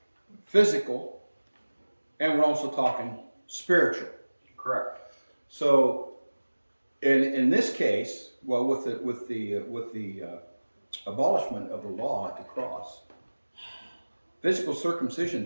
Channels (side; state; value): both; inverted; correlation -1.00